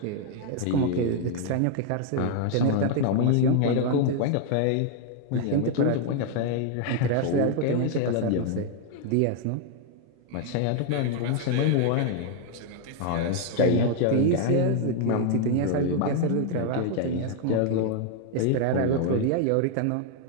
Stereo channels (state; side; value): different; both; correlation 0.00